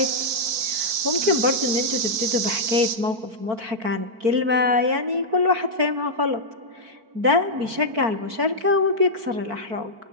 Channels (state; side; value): late; left; 4.5 ms